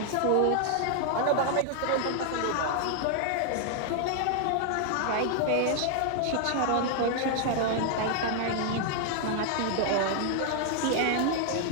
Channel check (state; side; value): different; both; correlation 0.00